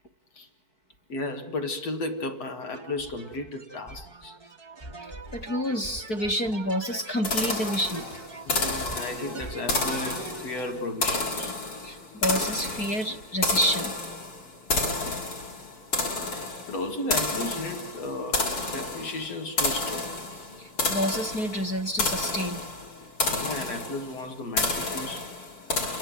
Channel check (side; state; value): right; late; 4.6 ms